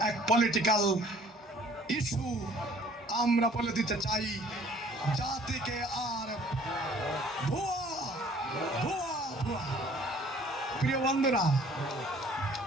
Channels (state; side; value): normal; both; correlation 0.56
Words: এক পলিটিক্যাল ইস্যু। আমরা বলে দিতে চাই জাতিকে আর ভুয়া ভুয়া ভুয়া প্রিয় বন্ধুরা